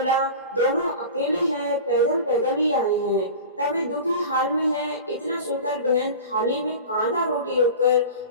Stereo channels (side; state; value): both; inverted; correlation -0.34